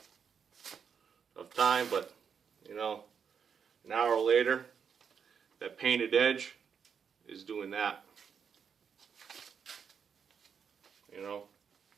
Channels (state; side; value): quieter; left; 6.9 dB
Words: time, but you know, an hour later, that painted edge is doing that. You know.